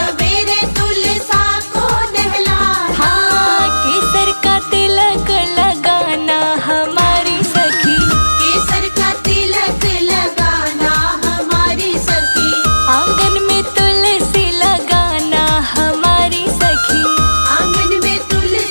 तुलसा को नहलाना। हाँ केसर का तिलक लगाना हमारी सखी, केसर का तिलक लगाना हमारी सखी, आंगन में तुलसी लगाना हमारी सखी, आंगन में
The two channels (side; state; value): both; inverted; correlation -1.00